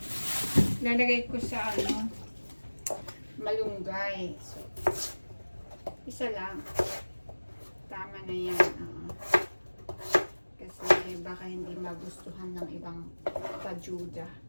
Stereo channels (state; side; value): inverted; both; correlation -1.00